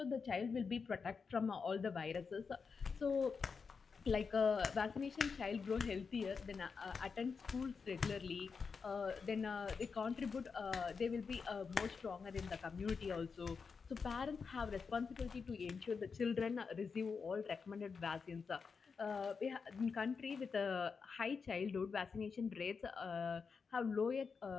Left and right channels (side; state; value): right; quieter; 5.3 dB